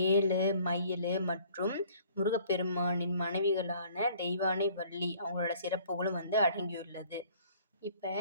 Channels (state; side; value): inverted; both; correlation -0.56